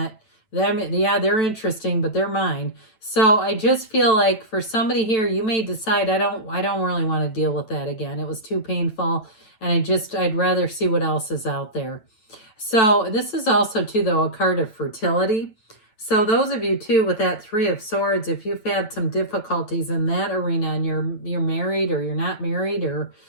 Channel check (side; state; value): right; late; 9.1 ms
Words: they're interesting, but they're mine. So I just feel like for somebody here, you may decide, I don't really want to deal with that again. It was too painful, and I'd rather see what else is out there. So this is also too, though, a card of fertility. So those of you too with that Three of Swords, if you've had some difficulties in that arena and you're married or you're not married, or